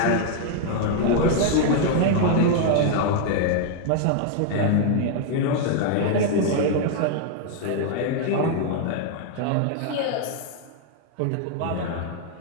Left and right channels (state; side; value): different; both; correlation 0.00